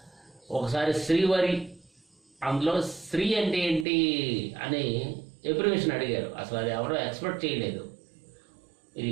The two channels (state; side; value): drops out; left; at 3.9 s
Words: ఒకసారి శ్రీవరి, అందులో శ్రీ అంటే ఏంటి అని ఎబ్రివేషన్ అడిగారు. అసలు అది ఎవరో ఎక్స్పెక్ట్ చేయలేదు. ఇది